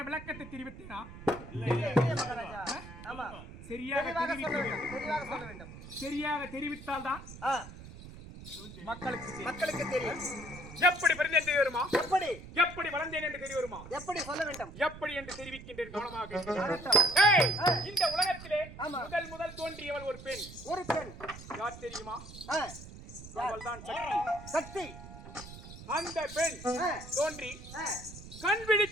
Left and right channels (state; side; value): noise; right; rumble, 14 dB below the sound